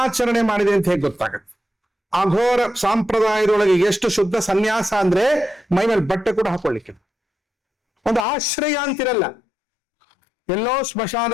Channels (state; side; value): drops out; right; at 8.2 s